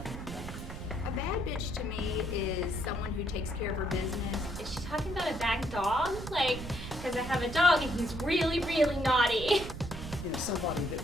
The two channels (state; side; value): noise; right; rumble, 9 dB below the sound